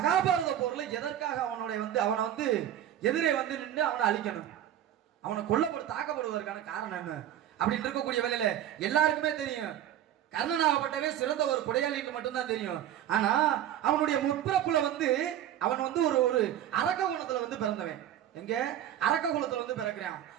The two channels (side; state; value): left; quieter; 11.3 dB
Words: போர்ல எதற்காக அவனை வந்து எதிரே வந்து நின்று அவனை அழிக்கணும், அவனை தாக்கப்படுவதற்கான காரணம் என்ன அப்படின்னு இருக்கக்கூடிய வேலையில எல்லாருக்குமே தெரியும் கர்ணனாகப்பட்டவே சிறந்த ஒரு கொடையாளின்னு மட்டும்தான் தெரியும். ஆனா அவனுடைய முற்பிறப்புல அவன் ஒரு அரக்க குலத்துல பிறந்தவன். எங்க அரக்க குலத்துல பிறக்கிறான்.